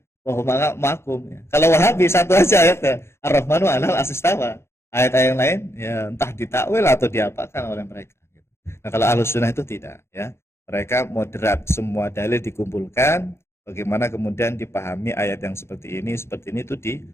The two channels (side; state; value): right; late; 0.12 ms